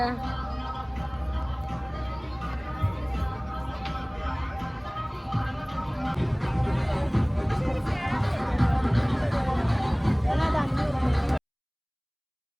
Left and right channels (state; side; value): identical; both; correlation 1.00